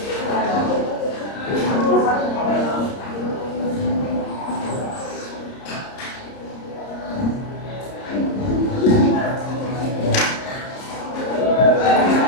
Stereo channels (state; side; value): late; right; 30 ms